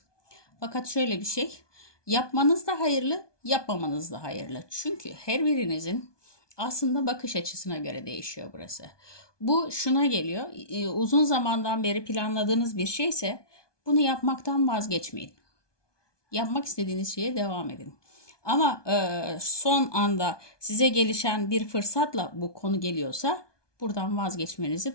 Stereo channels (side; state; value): right; late; 1.2 ms